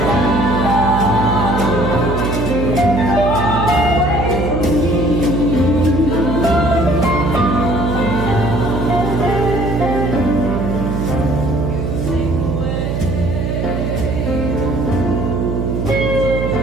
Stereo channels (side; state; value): right; noise; hum, 1 dB below the sound